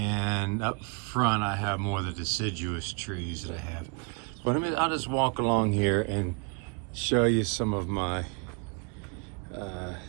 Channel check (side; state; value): left; quieter; 34.5 dB